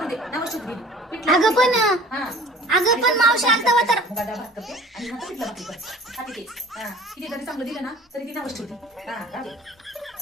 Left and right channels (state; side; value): normal; both; correlation 0.46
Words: दे. नवस दिली. पिठलं अगं पण हा. अगं पण मावशी आलता वा तर. मुगाचा भात करते आणि नंतर पिठलं भाकरी करते. खाते ते. हा. किती जरी चांगलं दिलं ना तरी ती नवस ठेवते. हा, राहू दे.